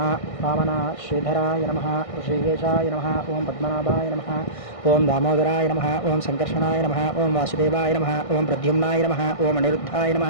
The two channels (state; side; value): late; right; 1.6 ms